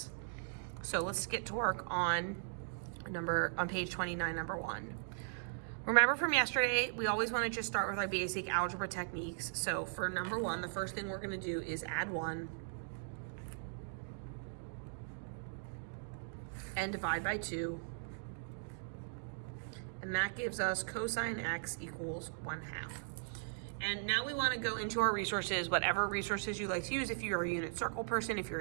So let's get to work on page 29, number 1. Remember from yesterday, we always wanna just start with our basic algebra techniques. So for number 1, the first thing we're gonna do is add 1 and divide by 2, and that gives us cosine x equals 1/2. And now we want to go into our resources, whatever resources you like to use. If you're a unit circle person, if you're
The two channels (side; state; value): left; silent; digital silence